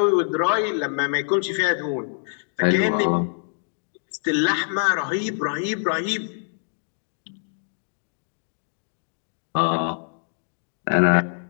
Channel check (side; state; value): right; silent; digital silence